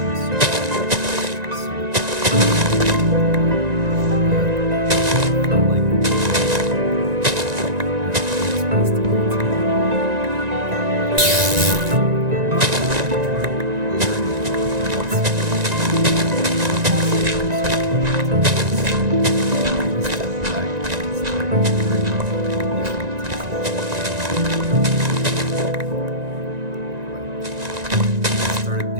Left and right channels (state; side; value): late; left; 1.9 ms